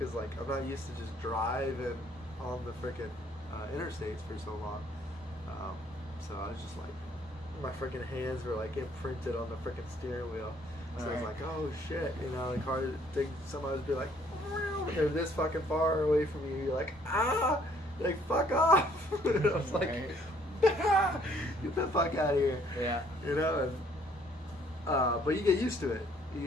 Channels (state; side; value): normal; both; correlation 0.63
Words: like I'm not used to just driving on the freaking interstates for so long. So I was just like, my freaking hands were like imprinted on the freaking steering wheel. So I was like, oh shit, you know, the car thing, somebody would be like, they're this fucking far away from you. You're like, like, fuck off. And I was like, get the fuck out of here. Yeah. You know, and but you get used to it.